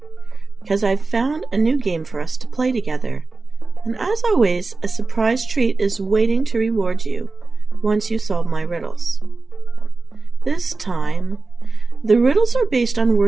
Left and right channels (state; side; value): quieter; left; 3.8 dB